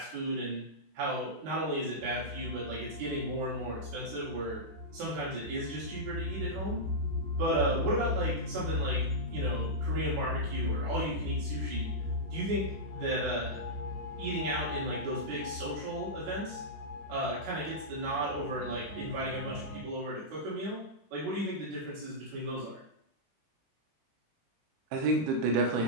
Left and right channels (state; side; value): late; left; 19 ms